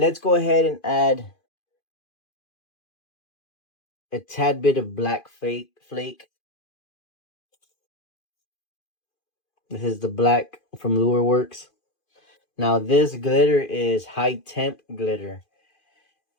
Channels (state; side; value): late; right; 2.5 ms